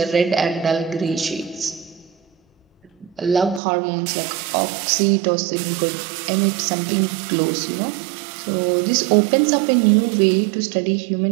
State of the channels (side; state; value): left; drops out; at 3.6 s